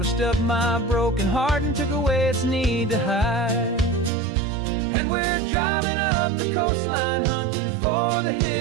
up my broken heart and took away its need to hide. And we're driving up the coastline hunting for the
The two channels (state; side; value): drops out; left; at 4.1 s